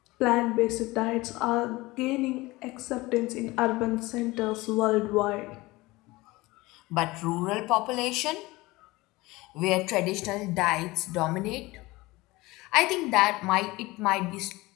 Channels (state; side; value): quieter; right; 20.9 dB